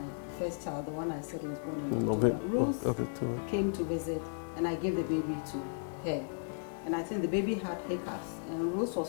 first child, the one I said was born in October, Rose came to visit and I gave the baby to her. And I think the baby had hiccups. And Rose was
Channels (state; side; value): silent; right; digital silence